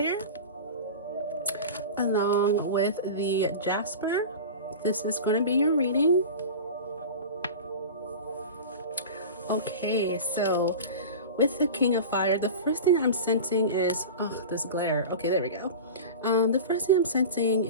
along with the Jasper, this is going to be your reading. Okay, so With the King of Fire, the first thing I'm sensing is, oh, this glare. Okay, there we go. The first thing I'm sensing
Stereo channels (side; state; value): both; inverted; correlation -0.30